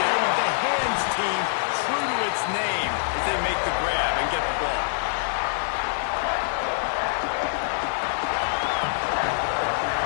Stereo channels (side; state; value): right; silent; digital silence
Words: with the hands team true to its name as they make the grab and get the ball.